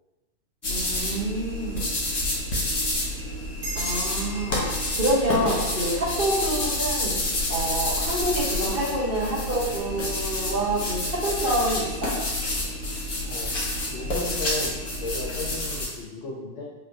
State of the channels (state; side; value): late; left; 2.5 ms